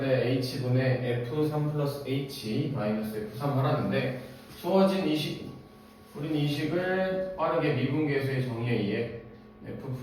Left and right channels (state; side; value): identical; both; correlation 1.00